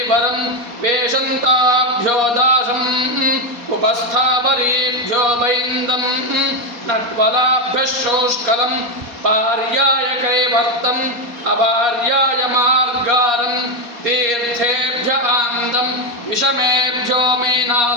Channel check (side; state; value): left; late; 4.2 ms